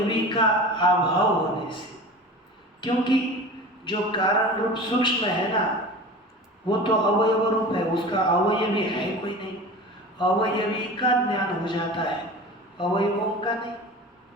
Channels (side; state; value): both; normal; correlation 0.35